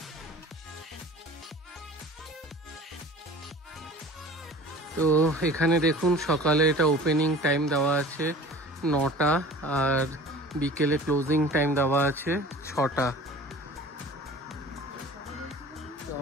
তো এখানে দেখুন সকালে এটা ওপেনিং টাইম দেওয়া আছে 9টা, আর বিকেলে ক্লোজিং টাইম দেওয়া আছে 6টা। তো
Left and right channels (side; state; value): both; normal; correlation 0.42